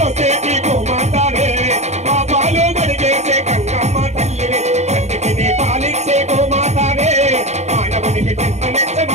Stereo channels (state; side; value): late; left; 0.33 ms